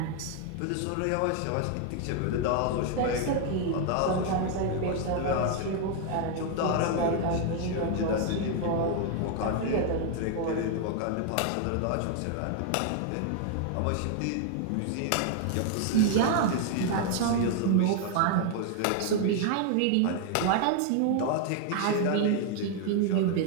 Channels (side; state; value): both; different; correlation 0.00